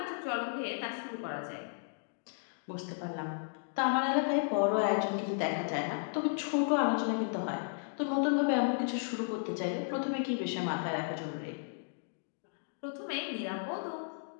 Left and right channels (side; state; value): right; silent; digital silence